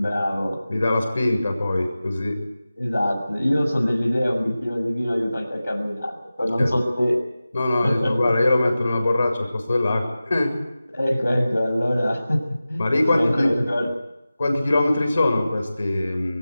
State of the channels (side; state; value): both; inverted; correlation -0.96